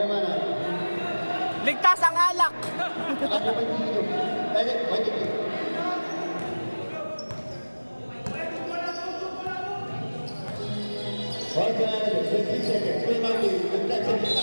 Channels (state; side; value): inverted; both; correlation -1.00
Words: Ligtas ang alak. Ako ba dito? Wait. Once again, 20 seconds. Kuya Martin, nagtagsa